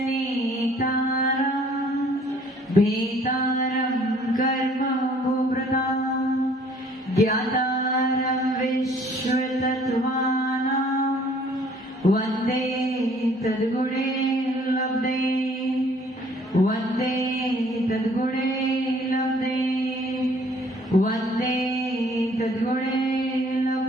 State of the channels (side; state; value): both; normal; correlation 0.58